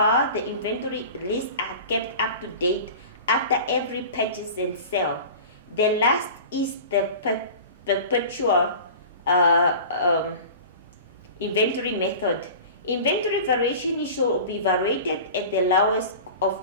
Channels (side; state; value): both; inverted; correlation -0.37